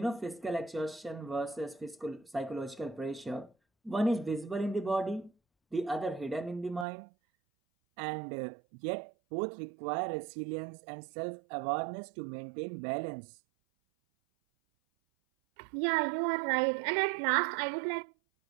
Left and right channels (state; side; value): drops out; left; at 6.9 s